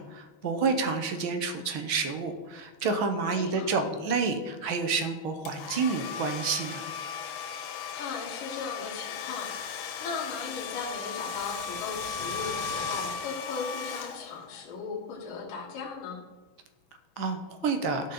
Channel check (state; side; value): late; right; 6.2 ms